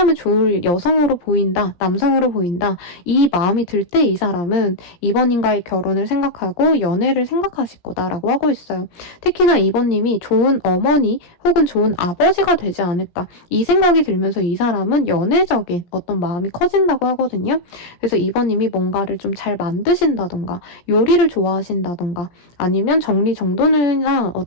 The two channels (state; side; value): late; right; 17 ms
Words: 좋을 여성으로 보인다, 남성으로 보인다, 이 마음이 들 때 이 사람은 이번님과의 결혼을 생각하고 연애를 생각하실 거다라고 하고 있어요. 특히나 이번님이 좋은 어머니 혹은 좋은 아버지가 되지 않을까, 이 생각이 들면서 이 사람은 연애적인 어떤 마음이 커진다고 하거든요. 그래서 이번님이 뭔가를 좀 잘 만드신다던가 요리를 좋아하신다던가 아니면 정리정돈이나